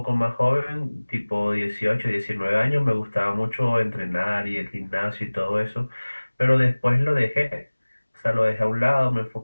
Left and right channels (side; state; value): both; inverted; correlation -1.00